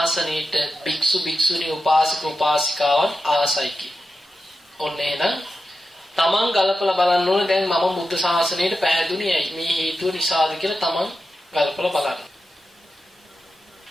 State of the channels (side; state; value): both; normal; correlation 0.90